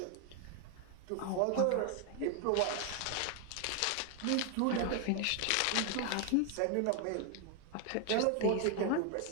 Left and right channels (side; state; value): both; different; correlation 0.00